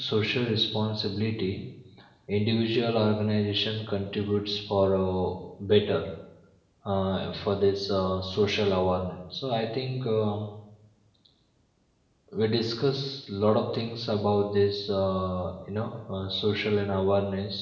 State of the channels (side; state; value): both; identical; correlation 1.00